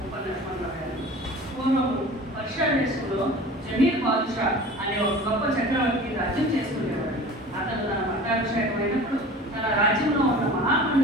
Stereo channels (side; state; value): both; normal; correlation 0.40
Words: ఉపన్యాసంలో పూర్వం పర్షియా దేశంలో జమీర్ బాదుషా అనే ఒక గొప్ప చక్రవర్తి రాజ్యం చేస్తుండేవాడు. అతను తన పట్టాభిషేకమైనప్పుడు తన రాజ్యంలో ఉన్న